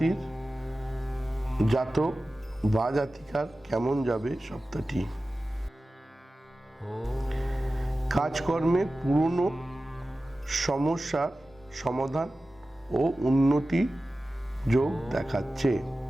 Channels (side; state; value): both; normal; correlation 0.95